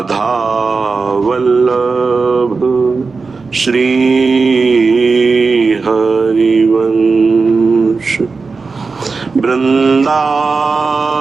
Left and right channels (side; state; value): left; quieter; 4.4 dB